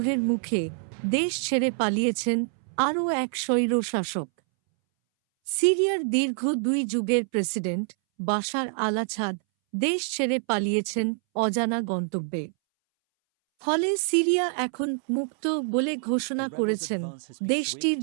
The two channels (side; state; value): left; silent; 61 dB below the other